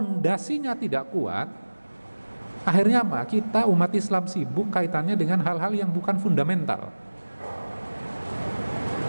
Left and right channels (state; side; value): inverted; both; correlation -1.00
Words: tidak kuat, akhirnya apa? Kita umat Islam sibuk kaitannya dengan hal-hal yang bukan fundamental.